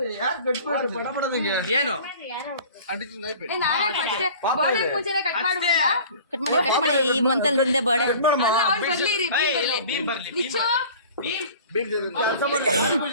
ಏನು ಕಟ್ ಮಾಡಿ ಈ ಮಂತಲ್ಲಿ ಹಿಂದೆ ಬರ್ಡೆ.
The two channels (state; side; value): inverted; both; correlation -0.44